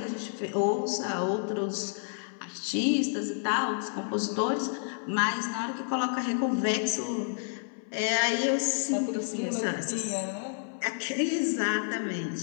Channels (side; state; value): right; silent; 58 dB below the other